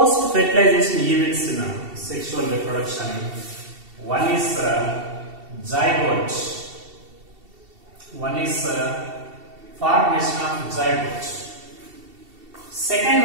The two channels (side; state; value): left; late; 2.7 ms